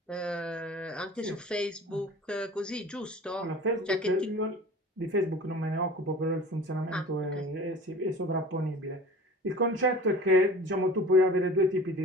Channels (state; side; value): normal; both; correlation 0.41